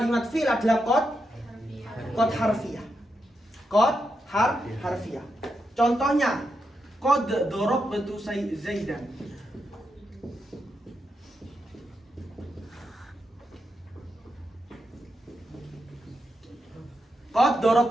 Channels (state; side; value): normal; both; correlation 0.85